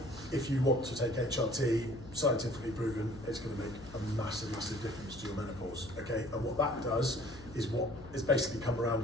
if you want to take HRT, scientifically proven, it's going to make a massive, massive difference to your menopause, okay? And what that does is what is basically come around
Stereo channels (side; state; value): left; noise; hum, 17 dB below the sound